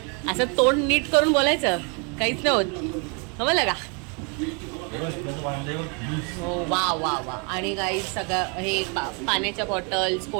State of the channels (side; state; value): left; quieter; 34.8 dB